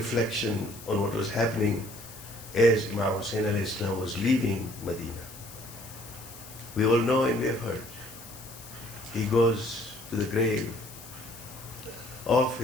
on what was happening as Imam Hussain alayhi salam was leaving Medina. We all know and we have heard. He goes to the grave of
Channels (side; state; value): left; noise; hiss, 16 dB below the sound